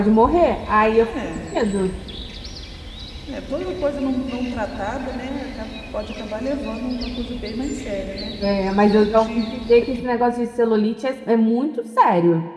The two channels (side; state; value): both; identical; correlation 1.00